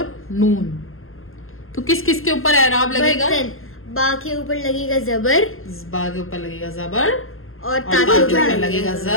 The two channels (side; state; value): right; late; 0.61 ms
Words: नून, तो किस किस के ऊपर एराब लगेगा, बा के ऊपर लगेगा जबर, बा के ऊपर लगेगा जबर, और ता के ऊपर लगेगा